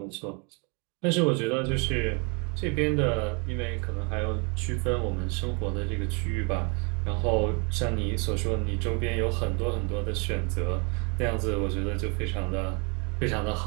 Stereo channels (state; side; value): quieter; left; 32.9 dB